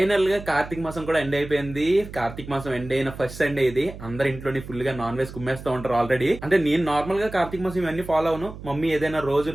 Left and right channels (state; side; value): noise; right; hum, 13 dB below the sound